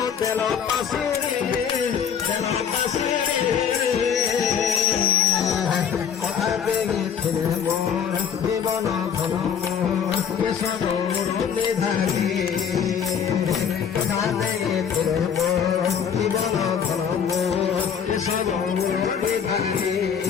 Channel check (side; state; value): right; quieter; 7.5 dB